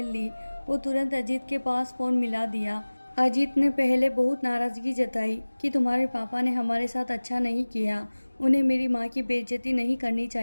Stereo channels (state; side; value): inverted; both; correlation -1.00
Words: ली और तुरंत अजीत के पास फ़ोन मिला दिया। अजीत ने पहले बहुत नाराज़गी जताई कि तुम्हारे पापा ने हमारे साथ अच्छा नहीं किया, उन्हें मेरी माँ की बेइज्जती नहीं करनी